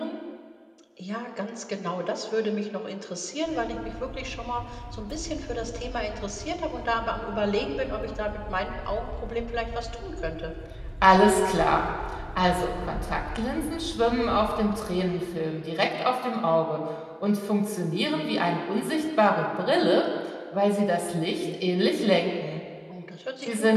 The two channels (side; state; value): both; identical; correlation 1.00